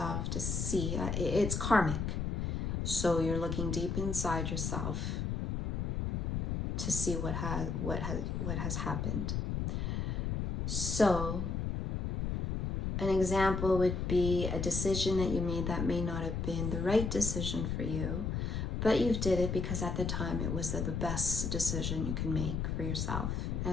to see, it's karmic. So you're looking deep inside yourself to see what has happened. So an example would be a decision that you made that may not have been the right decision for you, but you did it because at the time it was the best decision you can make for yourself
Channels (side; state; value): left; noise; rumble, 1 dB below the sound